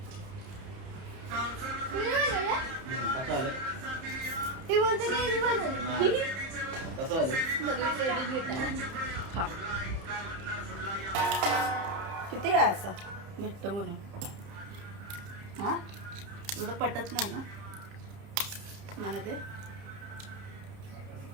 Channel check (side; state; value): left; late; 30 ms